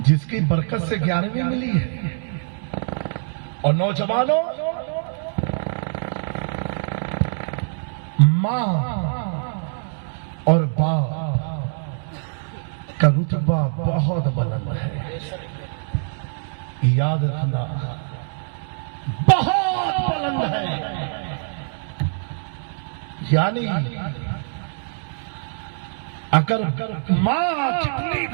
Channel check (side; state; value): left; silent; digital silence